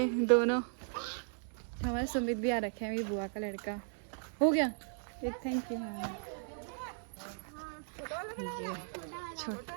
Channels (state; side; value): silent; left; digital silence